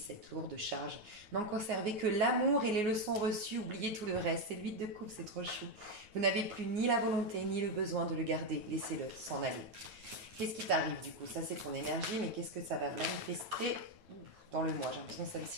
lourde charge. N'en conservez que l'amour et les leçons reçues, oubliez tout le reste. C'est l'huile de coupe, c'est trop chou. Vous n'avez plus ni la volonté ni le besoin de le garder. Laissez-le s'en aller. Qu'est-ce qui t'arrive du coup? Ça, c'est ton énergie, mais qu'est-ce que ça va manifester dans le mois? J'ai l'impression que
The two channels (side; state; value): left; late; 9.5 ms